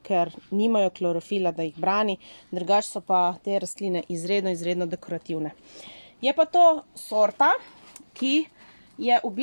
ker nimajo klorofila, da jih brani. Drugače so pa te rastline izredno dekorativne. Je pa to sorta, ki je v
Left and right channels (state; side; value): inverted; both; correlation -1.00